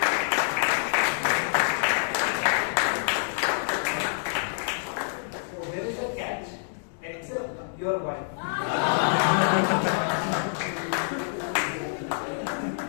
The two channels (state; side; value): silent; right; digital silence